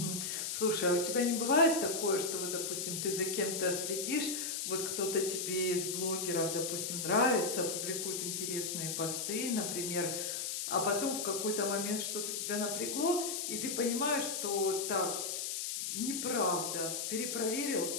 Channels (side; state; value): left; noise; hiss, 2 dB below the sound